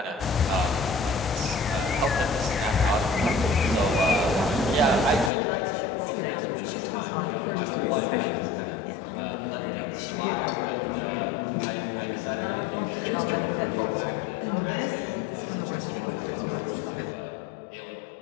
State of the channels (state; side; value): drops out; right; at 5.3 s